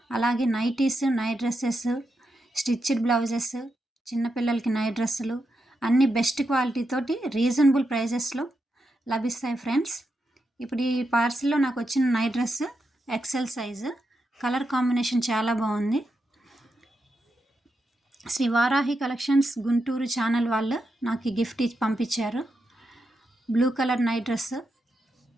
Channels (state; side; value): normal; both; correlation 0.86